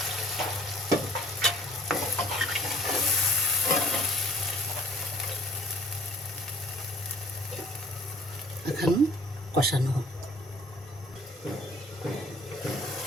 এখন কষানো হোক।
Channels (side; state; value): both; normal; correlation 0.55